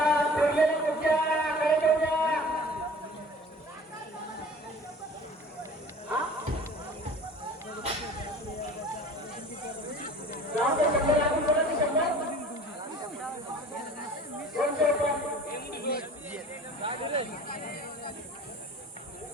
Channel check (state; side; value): normal; both; correlation 0.44